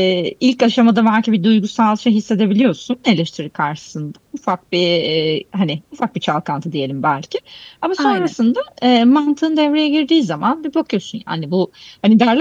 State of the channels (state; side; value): identical; both; correlation 1.00